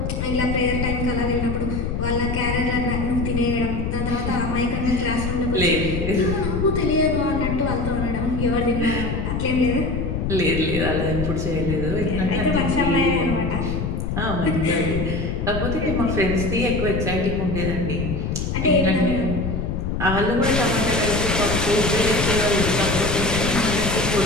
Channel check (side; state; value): left; noise; rumble, 2 dB below the sound